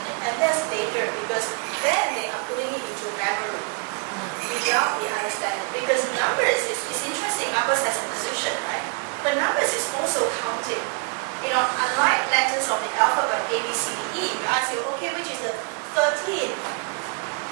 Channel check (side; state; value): left; quieter; 35.9 dB